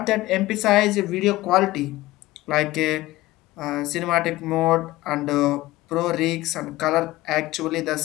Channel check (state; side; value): quieter; right; 17.9 dB